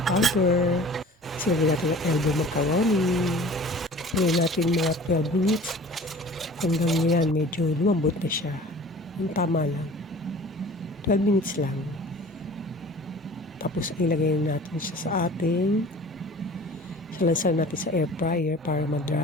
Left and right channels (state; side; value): normal; both; correlation 0.44